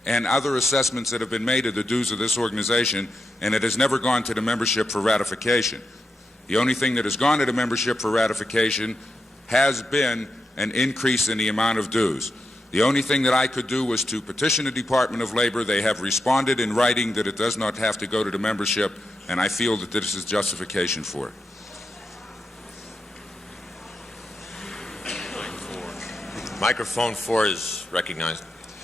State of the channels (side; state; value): both; normal; correlation 0.87